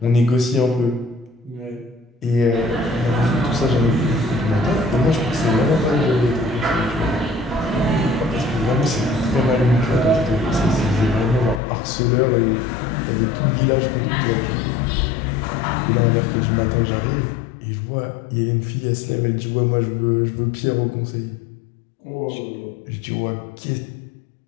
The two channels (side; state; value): right; drops out; at 11.6 s